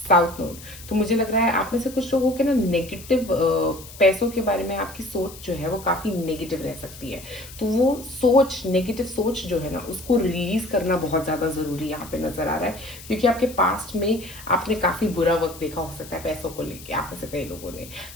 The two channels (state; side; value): noise; left; hiss, 17 dB below the sound